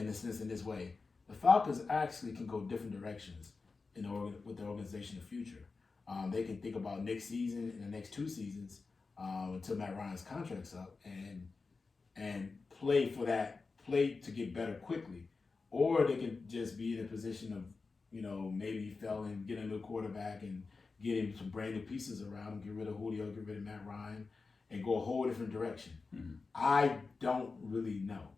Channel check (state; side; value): quieter; right; 4.2 dB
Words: this way. The Falcons actually can go different directions with the organization in the future. They can think about next season and the next 2 seasons until Matt Ryan's contract's up and play to get better quickly. Or they can just be in a position of maybe fell and get a new quarterback and get him some brand new pieces around him, get rid of Julio, get rid of Matt Ryan, and go a whole different direction. Mm-hmm. I don't really know